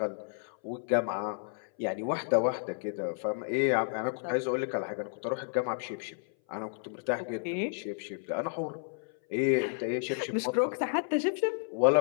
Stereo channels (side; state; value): right; silent; 57 dB below the other